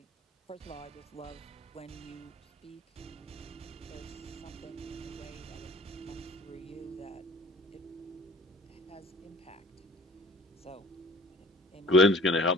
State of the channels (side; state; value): both; normal; correlation 0.49